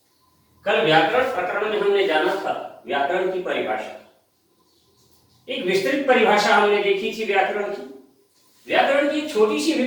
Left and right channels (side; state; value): both; identical; correlation 1.00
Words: कल व्याकरण प्रकरण में हमने जाना था व्याकरण की परिभाषा। एक विस्तृत परिभाषा हमने देखी थी व्याकरण की। व्याकरण की छोटी सी भी